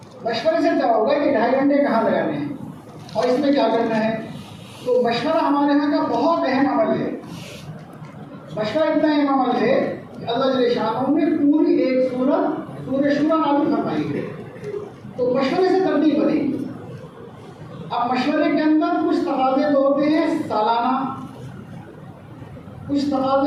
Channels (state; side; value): identical; both; correlation 1.00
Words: مشورے سے کیا ہوگا کہ 2.5 گھنٹے کہاں لگانے ہیں اور اس میں کیا کرنا ہے. تو مشورہ ہمارے یہاں کا بہت اہم عمل ہے. مشورہ اتنا اہم عمل ہے کہ اللہ جل شانہ نے پوری ایک سورت سورہ شورى نازل فرمائی ہے. تو مشورے سے ترتیب بنے گی. اب مشورے کے اندر کچھ تقاضے تو ہوتے ہیں سالانہ، کچھ